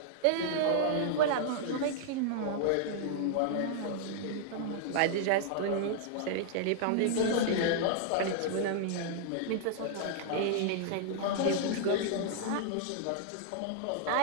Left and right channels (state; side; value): different; both; correlation -0.01